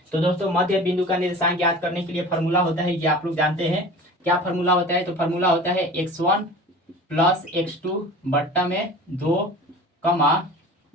तो दोस्तों मध्य बिंदु का निर्देशांक ज्ञात करने के लिए फॉर्मूला होता है, ये आप लोग जानते हैं। क्या फॉर्मूला होता है, तो फॉर्मूला होता है x1 + x2 बट्टा में 2,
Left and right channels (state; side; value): normal; both; correlation 0.39